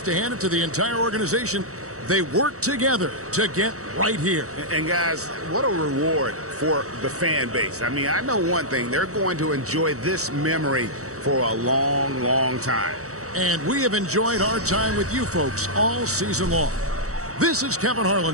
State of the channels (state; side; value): late; left; 0.65 ms